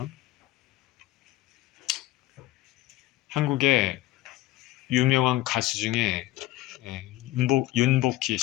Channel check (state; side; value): quieter; right; 16.9 dB